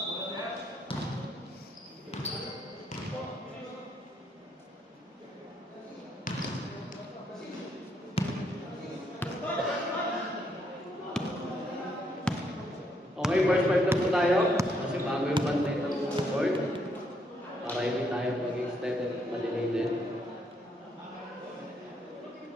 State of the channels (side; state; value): both; normal; correlation 0.73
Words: Okay, first five na po tayo. Kasi bago yung bantay ng board. Para hindi tayo mag-extended at malinated.